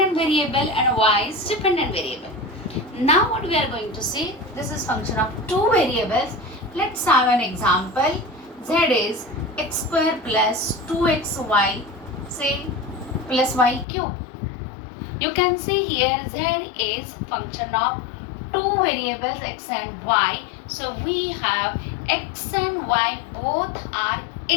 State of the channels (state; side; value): drops out; right; at 13.9 s